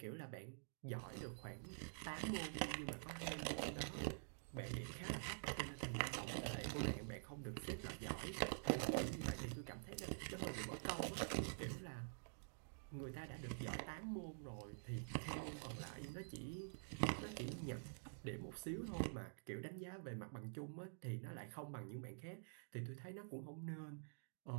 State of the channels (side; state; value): left; silent; digital silence